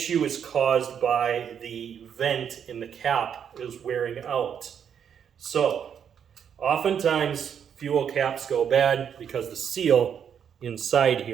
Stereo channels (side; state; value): left; quieter; 8.1 dB